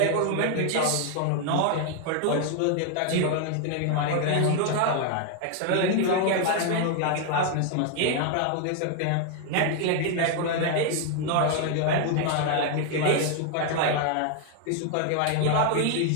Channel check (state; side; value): different; both; correlation 0.00